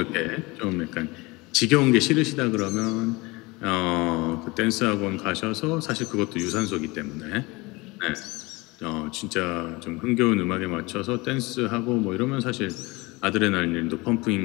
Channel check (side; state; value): right; quieter; 23.8 dB